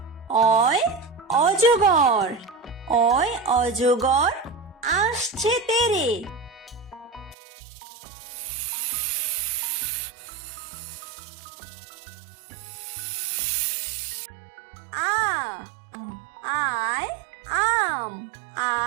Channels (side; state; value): left; drops out; at 7.4 s